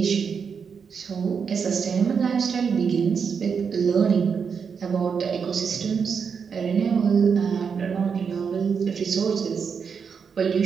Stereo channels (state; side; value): quieter; left; 6.3 dB